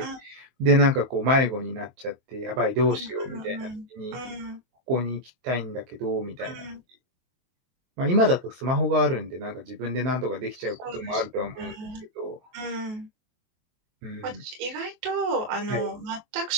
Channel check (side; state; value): left; late; 23 ms